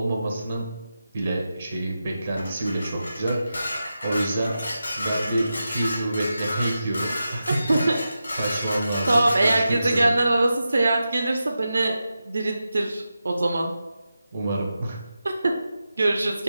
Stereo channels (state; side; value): inverted; both; correlation -0.90